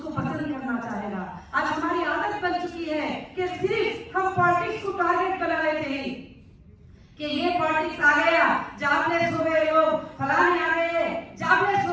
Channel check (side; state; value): both; identical; correlation 1.00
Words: पसंद करना चाहेगा। आज हमारी आदत बन चुकी है कि सिर्फ हम पॉलिटिक्स को टारगेट बना लेते हैं कि ये पॉलिटिक्स आ गया, जॉबलेस हो गए लोग, फलाने आ गए, जॉबलेस